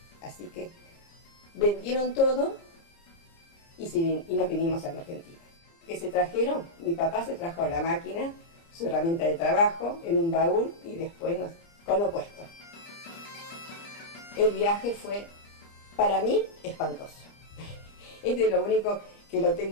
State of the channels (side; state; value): right; late; 30 ms